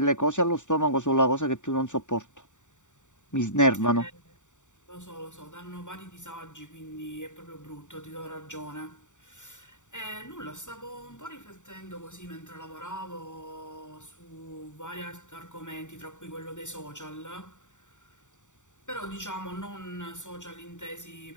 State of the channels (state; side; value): late; right; 0.85 ms